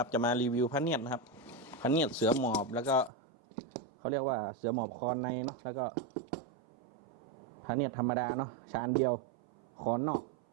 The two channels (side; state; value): left; drops out; at 3.1 s